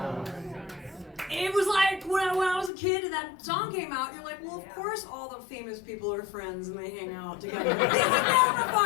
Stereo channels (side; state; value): right; drops out; at 2.7 s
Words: It was like when I was a kid and that song came out, you're like, well, of course all the famous people are friends and they hang out together. This would never